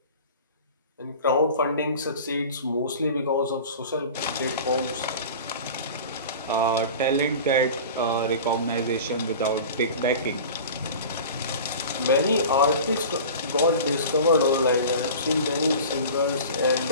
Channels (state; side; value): inverted; both; correlation -0.37